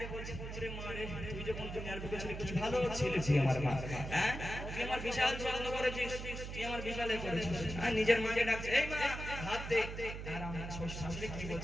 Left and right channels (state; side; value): noise; right; hum, 7 dB below the sound